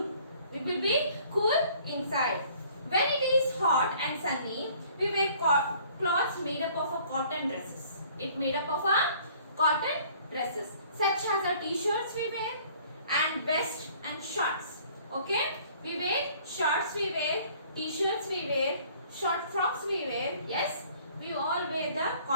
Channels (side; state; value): both; inverted; correlation -0.55